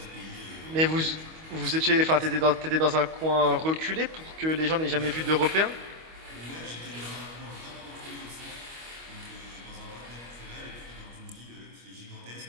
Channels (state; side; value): late; left; 25 ms